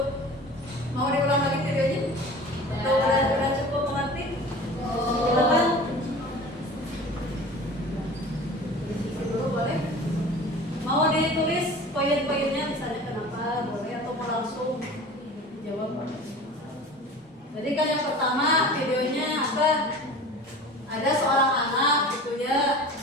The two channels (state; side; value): normal; both; correlation 0.39